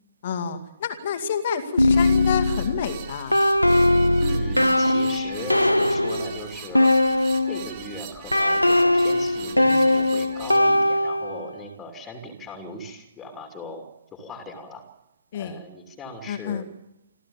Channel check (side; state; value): both; inverted; correlation -0.92